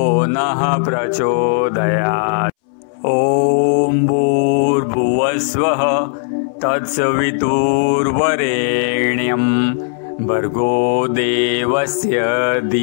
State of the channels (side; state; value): right; silent; 66 dB below the other